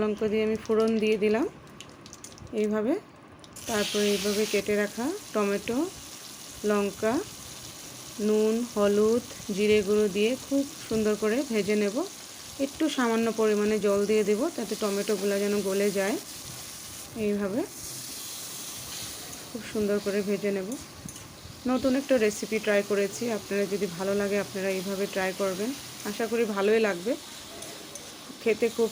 লঙ্কা দিয়ে আমি ফোড়ন দিয়ে দিলাম এইভাবে। তারপরে এইভাবে কেটে রাখা টমেটো, লঙ্কা, নুন, হলুদ, জিরে গুঁড়ো দিয়ে খুব সুন্দর করে ভেজে নেব। একটু সামান্য পরিমাণে জল দিয়ে দেব তাতে টমেটোগুলো যেন গলে যায়। এইভাবে খুব সুন্দর করে ভেজে নেব। নতুন একটা রেসিপি ট্রাই করেছি, আপনারা যদি ভালো লাগে আপনারা এইভাবে ট্রাই করবেন, আশা করি ভালোই লাগবে। খেতে খুব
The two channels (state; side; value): identical; both; correlation 1.00